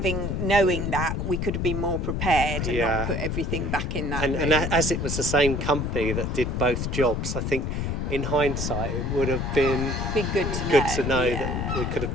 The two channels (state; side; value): noise; left; rumble, 2 dB below the sound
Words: knowing that, we could have been more prepared and Yeah. not put everything back in that. And room. as it was the same company that did both jobs, I think in hindsight it would have been Be good to know. that Yeah. we could